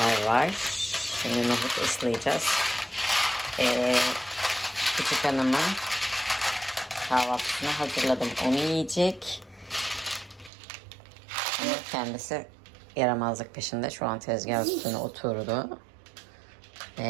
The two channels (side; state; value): left; drops out; at 10.5 s